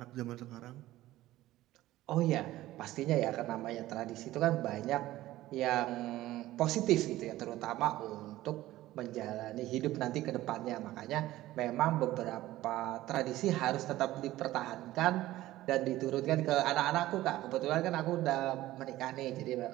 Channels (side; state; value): left; quieter; 15.9 dB